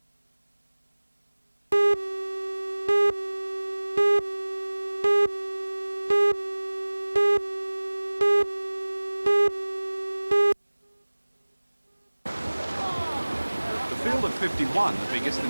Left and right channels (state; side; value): inverted; both; correlation -1.00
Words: The field of 51, the biggest in